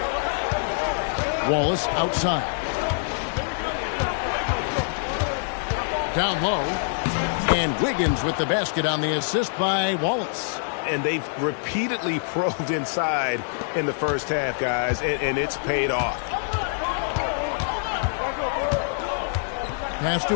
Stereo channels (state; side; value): silent; right; 59 dB below the other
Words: Wallace outside. Down low. And Wiggins with the basket on the assist by Wallace. And they've repeatedly probed inside in the first half, guys, and it's paid off. Pass